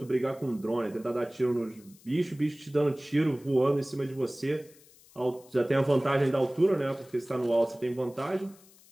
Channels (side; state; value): left; noise; hiss, 26 dB below the sound